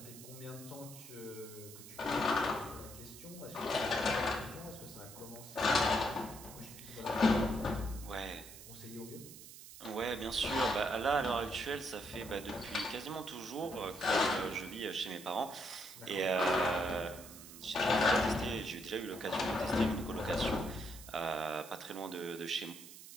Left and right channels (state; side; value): noise; right; hiss, 15 dB below the sound